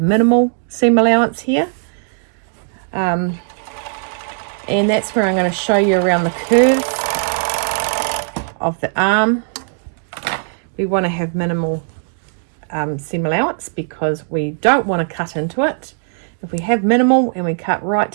seam allowance here. And that's where I'm going to show you around the curve of the arm. We want to have minimal seam allowance because we don't want to cut into it. If we have minimal and we cut right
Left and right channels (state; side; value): silent; left; digital silence